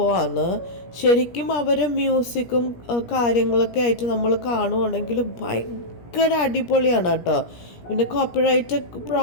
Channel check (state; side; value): late; right; 17 ms